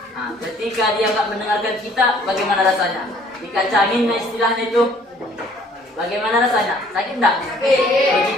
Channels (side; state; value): both; normal; correlation 0.58